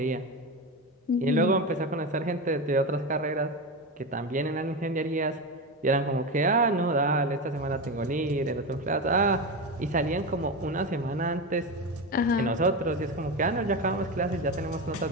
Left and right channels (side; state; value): both; normal; correlation 0.19